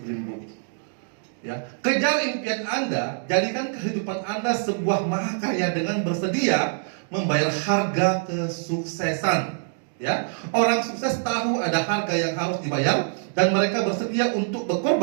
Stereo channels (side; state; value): left; silent; 62 dB below the other